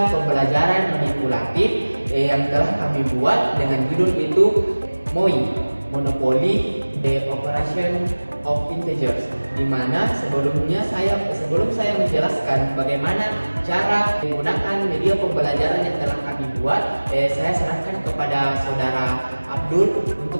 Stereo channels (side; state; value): both; inverted; correlation -1.00